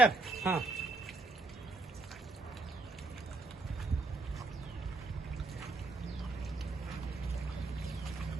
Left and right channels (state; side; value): quieter; left; 3.2 dB